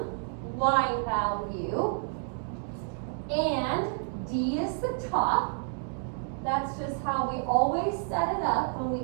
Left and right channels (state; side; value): silent; left; 58 dB below the other